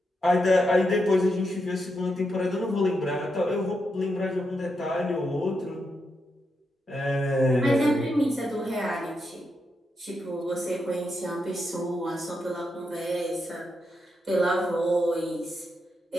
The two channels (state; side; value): normal; both; correlation 0.84